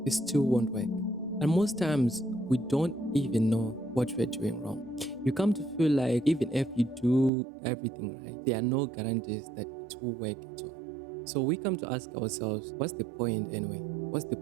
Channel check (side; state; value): left; drops out; at 7.3 s